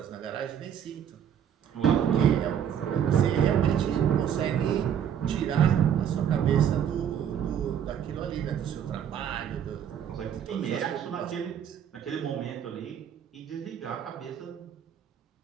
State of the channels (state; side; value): quieter; left; 9.0 dB